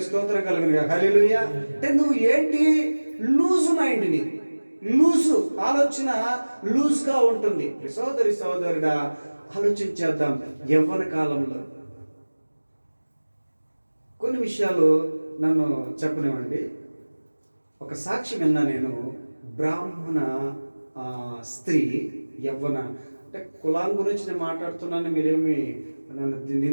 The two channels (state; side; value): inverted; both; correlation -1.00